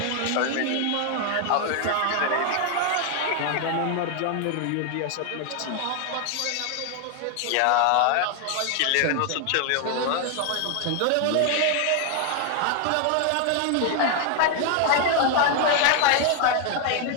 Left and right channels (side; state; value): both; different; correlation 0.01